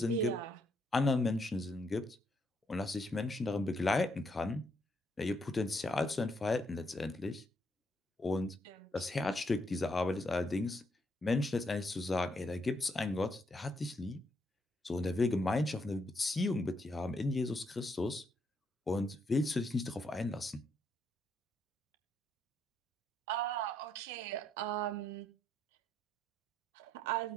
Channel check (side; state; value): both; normal; correlation 0.75